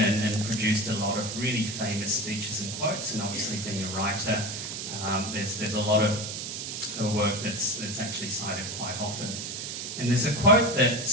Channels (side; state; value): right; noise; hiss, 6 dB below the sound